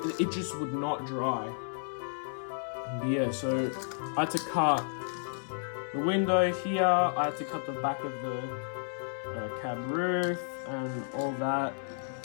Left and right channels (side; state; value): right; silent; 56 dB below the other